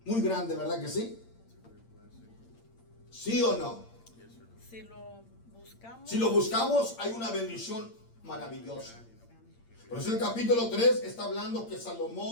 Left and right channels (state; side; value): late; right; 8.7 ms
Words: muy grande, ¿verdad que sí? It's a great blessing. ¿Sí o no? Yes or no? Si lo buscamos, Si lo buscamos, hay una bendición maravillosa. Por eso el capítulo 3 está hablando que